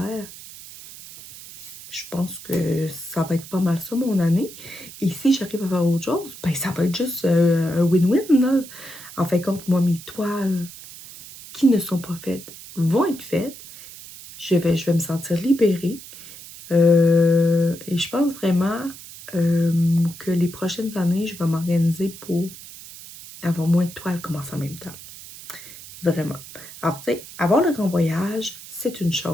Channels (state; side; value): noise; right; hiss, 16 dB below the sound